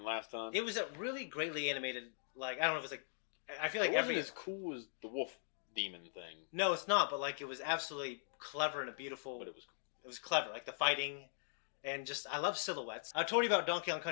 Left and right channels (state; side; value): silent; right; digital silence